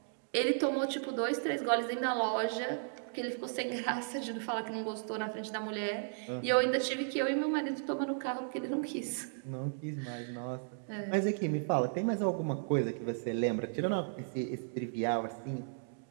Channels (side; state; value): left; silent; digital silence